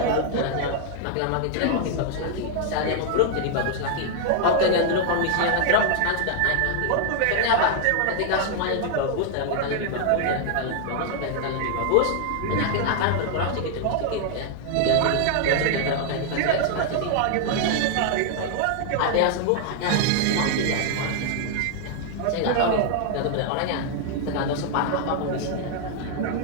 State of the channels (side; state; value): both; different; correlation 0.00